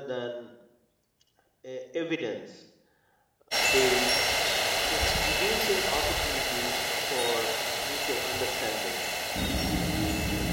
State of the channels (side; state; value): both; identical; correlation 1.00